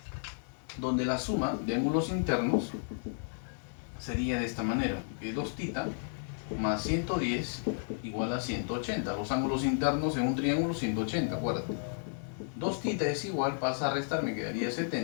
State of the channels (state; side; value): silent; right; digital silence